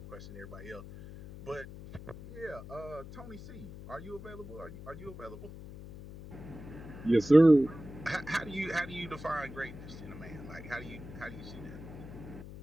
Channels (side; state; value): left; noise; hum, 13 dB below the sound